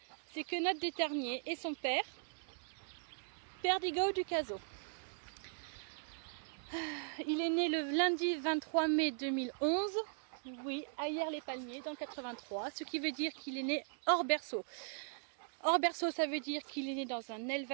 c'est Quenotte d'Eternier, et son père, Perdigo du Caso. Il est né le lundi 23 mai 2011. Oui, à Yerles-les-Palmiers, dans le 83, ce qui veut dire qu'il est né hors berceau. Hors berceau, ça veut dire qu'il est né dans un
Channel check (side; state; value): left; silent; digital silence